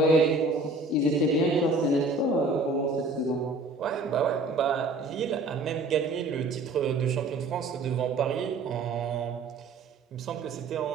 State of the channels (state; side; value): quieter; left; 3.1 dB